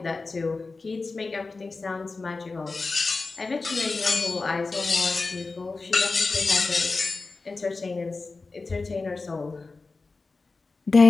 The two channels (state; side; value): quieter; right; 3.9 dB